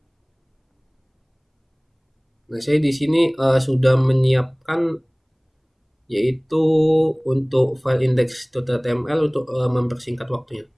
Nah, saya di sini sudah menyiapkan yaitu untuk file index.html untuk mempersingkat waktunya.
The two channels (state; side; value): identical; both; correlation 1.00